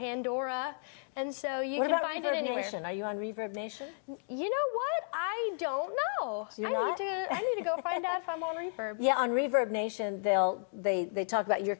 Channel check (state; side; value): silent; right; digital silence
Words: And so you can find it anywhere. Nation? Are you on Reverb Nation? You know what? I don't know. I need to go find out if I'm on Reverb. Yeah, on Reverb Nation, they talk about your